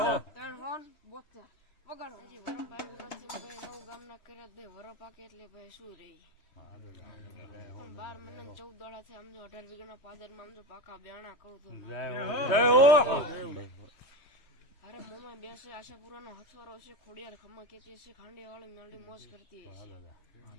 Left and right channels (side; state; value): right; late; 3.2 ms